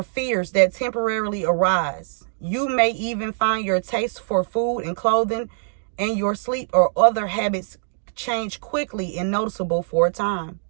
fears that temporarily arise. You may even find your taste for food and clothing and your sleep or other habits change quickly and noticeable for a time.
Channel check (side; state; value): left; silent; digital silence